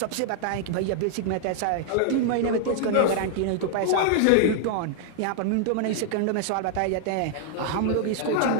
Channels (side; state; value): both; different; correlation -0.01